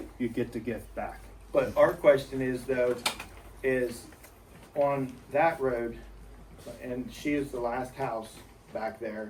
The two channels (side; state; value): both; identical; correlation 1.00